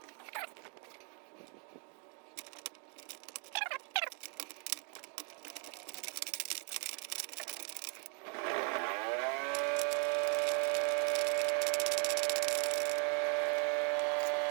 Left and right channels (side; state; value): left; quieter; 39.2 dB